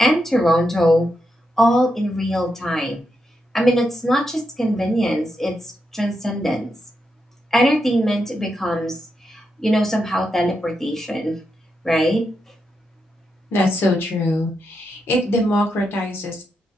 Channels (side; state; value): both; normal; correlation 0.84